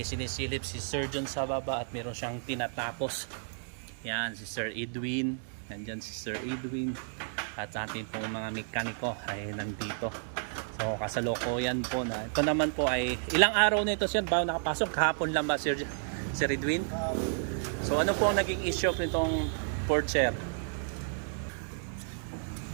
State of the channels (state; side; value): silent; left; digital silence